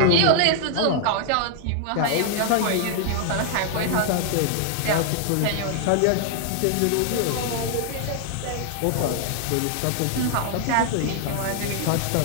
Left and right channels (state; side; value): different; both; correlation 0.00